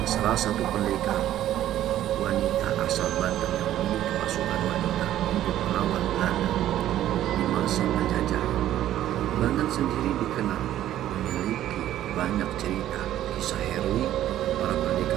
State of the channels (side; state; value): left; quieter; 12.5 dB